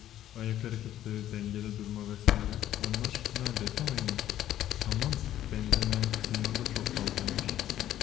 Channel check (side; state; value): right; quieter; 12.3 dB